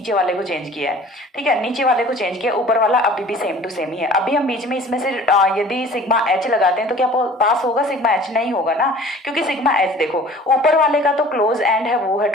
वाले को चेंज किया है, ठीक है, नीचे वाले को चेंज किया, ऊपर वाला अभी भी सेम टू सेम ही है। अभी हम बीच में इसमें से यदि सिग्मा एच लगाते हैं तो क्या पास होगा सिग्मा एच? नहीं होगा ना, क्योंकि सिग्मा एच देखो ऊपर वाले का तो क्लोज एंड है वो है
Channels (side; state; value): both; normal; correlation 0.47